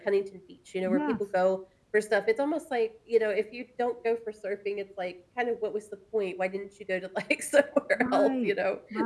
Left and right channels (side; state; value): both; identical; correlation 1.00